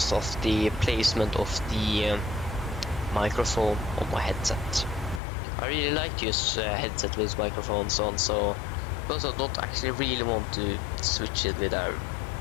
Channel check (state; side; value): drops out; right; at 5.2 s